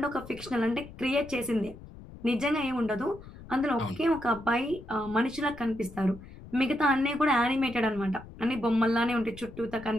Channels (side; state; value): left; noise; rumble, 17 dB below the sound